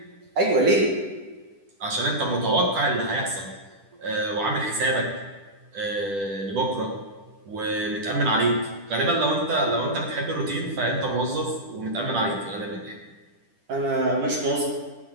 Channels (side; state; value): left; late; 10 ms